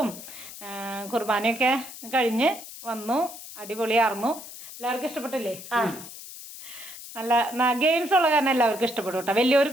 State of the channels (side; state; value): left; noise; hiss, 13 dB below the sound